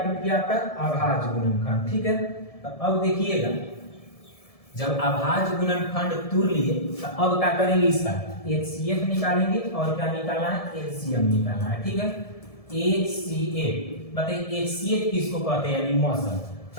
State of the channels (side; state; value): right; late; 1.7 ms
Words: गया आपका अभाज्य गुणनखंड। ठीक है, तो अब देखिएगा जब अभाज्य गुणनखंड तोड़ लिए तो अब क्या करेंगे, इसका एचसीएफ निकालेंगे और क्या निकालना है, एलसीएम निकालना है। ठीक है, एचसीएफ बताइए, एचसीएफ किसको कहते हैं, यानी मौसम।